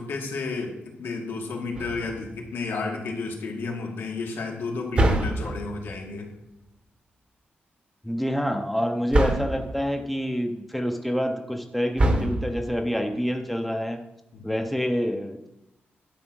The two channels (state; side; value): normal; both; correlation 0.89